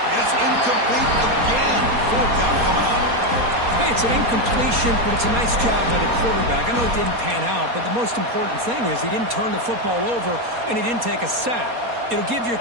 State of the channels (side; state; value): left; late; 4.2 ms